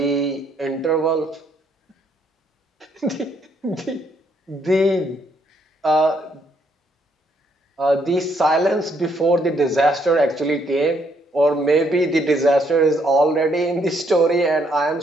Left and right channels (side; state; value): both; normal; correlation 0.71